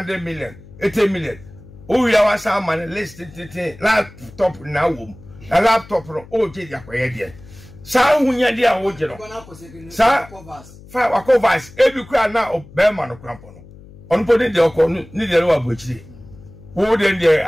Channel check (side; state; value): left; noise; hum, 20 dB below the sound